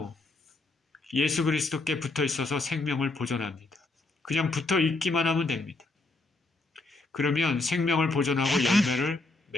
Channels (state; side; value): quieter; right; 3.2 dB